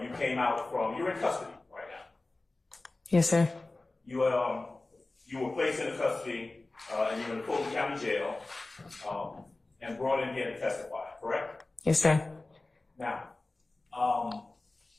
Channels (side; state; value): right; quieter; 3.1 dB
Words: came out from. You're in custody right now. Yes, sir. You were placed into custody and you're in the Fulton County Jail and brought in here to testify. Correct? Yes, sir. Now,